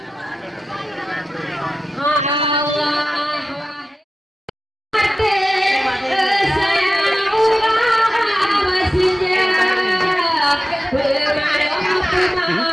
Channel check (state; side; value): normal; both; correlation 0.94